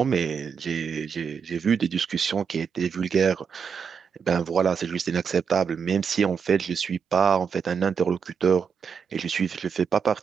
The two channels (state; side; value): quieter; left; 6.4 dB